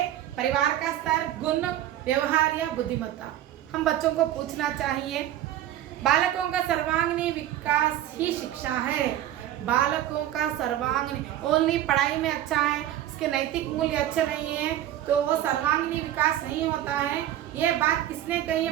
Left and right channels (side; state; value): left; quieter; 12.5 dB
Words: परिवार का स्तर, गुण, व्यवहार या बुद्धिमत्ता। हम बच्चों को पूछना चाहिए। बालकों का सर्वांगीण विकास ही शिक्षा है। बालकों का सर्वांगीण, ओनली पढ़ाई में अच्छा है, उसके नैतिक मूल्य अच्छे नहीं है तो वो सर्वांगीण विकास नहीं होता है। ये बात किसने कही